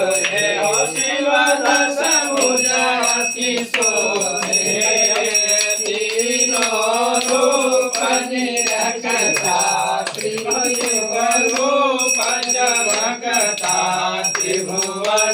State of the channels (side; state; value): both; identical; correlation 1.00